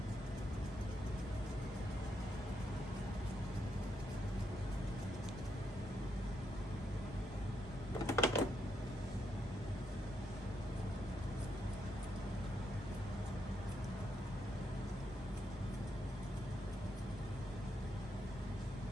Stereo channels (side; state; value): both; normal; correlation 0.79